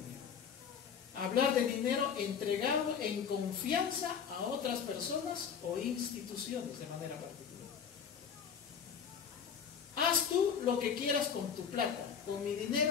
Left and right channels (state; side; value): quieter; right; 7.1 dB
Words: Hablar de dinero entregado en confianza a otras personas o instituciones de manera particular. Haz tú lo que quieras con tu plata. Con mi